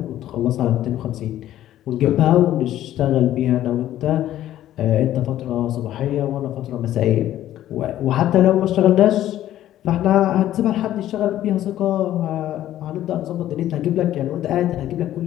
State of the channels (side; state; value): right; quieter; 12.8 dB